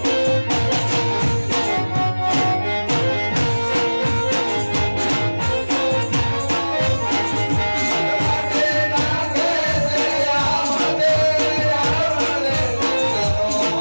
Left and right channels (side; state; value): both; inverted; correlation -1.00